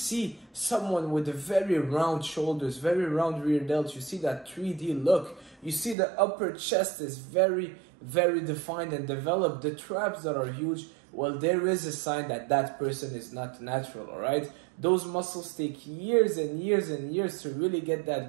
someone with a very round shoulders, very round rear delt, you see that 3D look, you see the upper chest is very defined and developed, the traps that are huge, well, there is a sign that that person is not natural, alright? Those muscles take years and years and years to really get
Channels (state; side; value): drops out; left; at 6.0 s